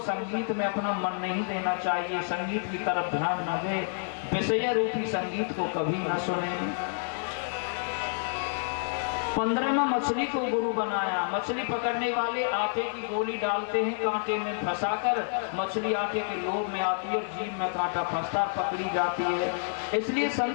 संगीत में अपना मन नहीं देना चाहिए, संगीत की तरफ ध्यान न दे, विषय रूपी संगीत को कभी न सुने। 15वां मछली को गुरु बनाया। मछली पकड़ने वाले आटे की गोली डालते हैं कांटे में फंसाकर, मछली आटे के लोभ में आती है और जीभ में कांटा फंसता पकड़ी जाती है। इसलिए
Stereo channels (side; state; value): right; silent; 59 dB below the other